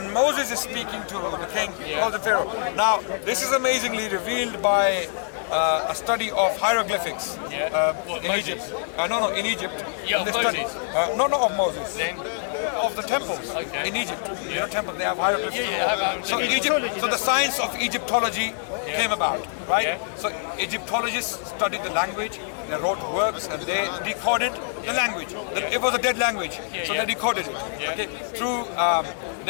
Moses is speaking to the king, he calls him Pharaoh. Now, this is amazingly revealed by a study of hieroglyphics in Egypt. In Egypt. Yeah, of Moses. Not of Moses. Then? Of the temples in Egypt. Temples, they have hieroglyphics. So in Egypt, so the science of Egyptology came about, right? So Egyptologists studied the language, they wrote works, and they decoded the language. It was a dead language, so they decoded it. Okay, through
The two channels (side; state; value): right; silent; digital silence